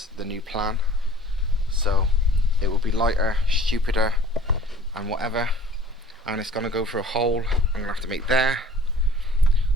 the new plan. So it will be lighter, stupider, and whatever, and it's gonna go through a hole I'm gonna have to make there.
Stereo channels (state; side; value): normal; both; correlation 0.49